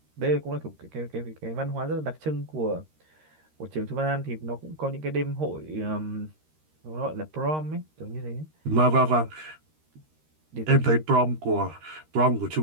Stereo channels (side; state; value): left; late; 13 ms